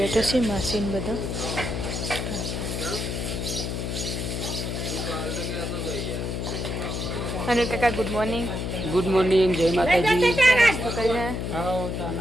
છે. માસીને બધા અને કાકા ગુડ મોર્નિંગ. ગુડ મોર્નિંગ, જય માતાજી. નાસ્તો કરીને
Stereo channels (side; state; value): left; noise; hum, 3 dB below the sound